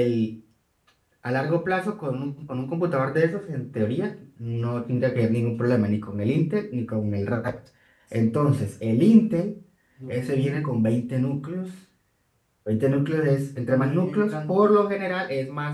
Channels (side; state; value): both; identical; correlation 1.00